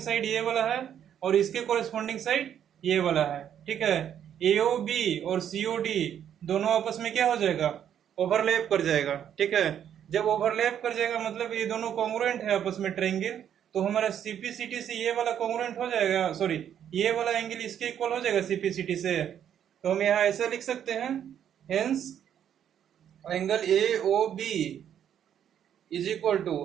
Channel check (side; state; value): left; quieter; 9.5 dB